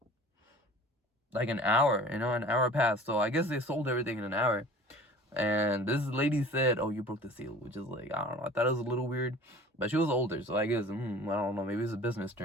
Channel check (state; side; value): normal; both; correlation 0.44